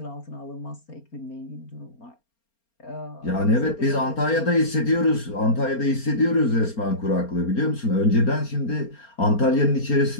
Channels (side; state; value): right; late; 4.3 ms